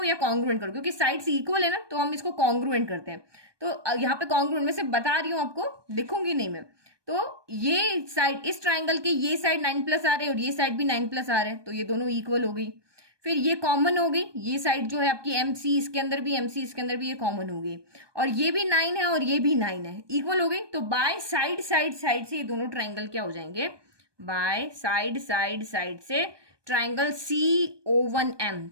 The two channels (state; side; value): late; left; 1.2 ms